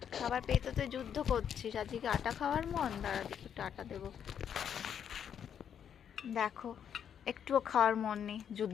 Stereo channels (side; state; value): right; quieter; 8.5 dB